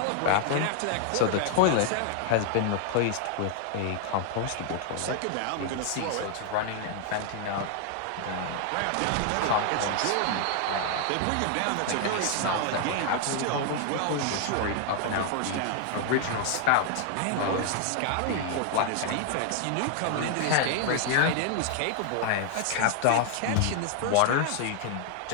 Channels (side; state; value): both; different; correlation 0.00